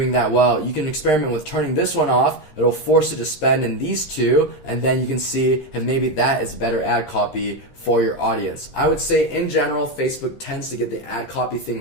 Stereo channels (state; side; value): late; right; 13 ms